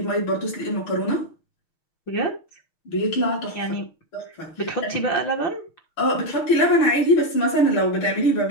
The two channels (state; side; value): late; right; 6.3 ms